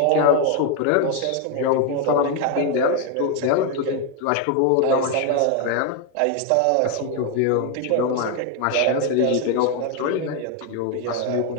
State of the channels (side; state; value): both; different; correlation 0.01